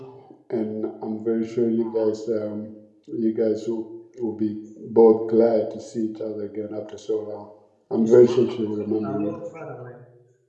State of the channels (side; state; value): both; identical; correlation 1.00